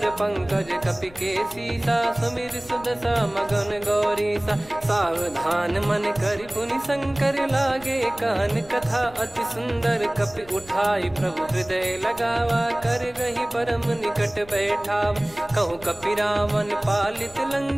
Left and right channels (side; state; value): left; noise; rumble, 22 dB below the sound